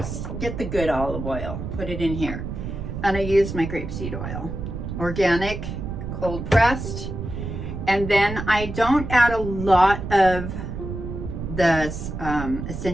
Get the good olive oil, put it in here. And I use my grapeseed oil, organic, cold pressed. And then I don't add a lot of the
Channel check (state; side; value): noise; right; rumble, 6 dB below the sound